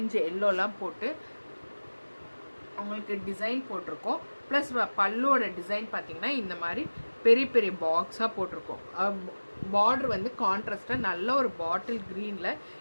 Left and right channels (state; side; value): inverted; both; correlation -1.00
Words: எல்லோலாம் போட்டு அவங்களுக்கு டிசைன் போட்டிருக்கோம். ப்ளஸ் பல்லுவோட டிசைன் பார்த்திங்கன்னா இந்த மாதிரி பெரிய பெரிய பாக்ஸாக போட்டிருக்கோம். பார்டர் கான்ட்ராஸ்டாக நல்ல ஒரு பாட்டில் க்ரீனில்